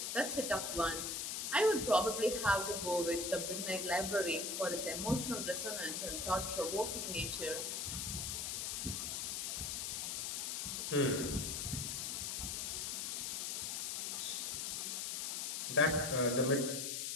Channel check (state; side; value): noise; left; hiss, 2 dB below the sound